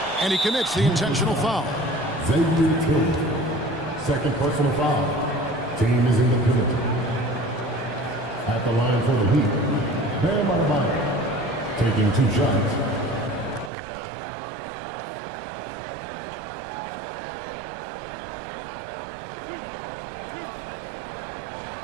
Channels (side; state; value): left; drops out; at 13.7 s